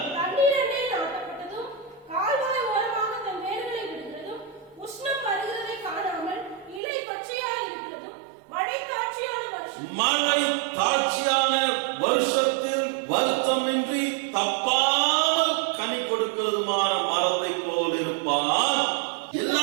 தண்ணீரண்டை நாட்டப்பட்டதும் கால்வாய் ஓரமாக தன் வேர்களை விடுகிறதும் உஷ்ணம் வருகிறதை காணாமல் இலை பச்சையாய் இருக்கிறதும் மழை தாட்சியான வருஷத்தில் வருத்தமின்றி தப்பாமல் கனி கொடுக்கிறதுமான மரத்தை போல் இருப்பான்.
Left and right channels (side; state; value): left; drops out; at 6.8 s